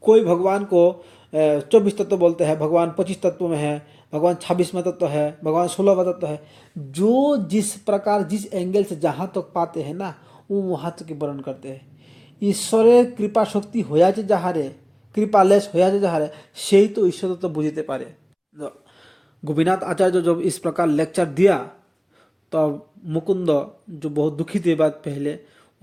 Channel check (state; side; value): identical; both; correlation 1.00